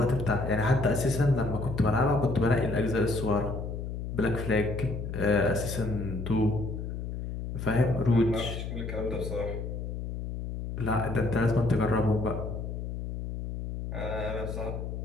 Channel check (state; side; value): noise; left; hum, 5 dB below the sound